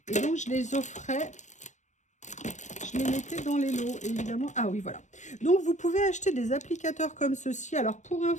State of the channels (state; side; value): late; right; 0.35 ms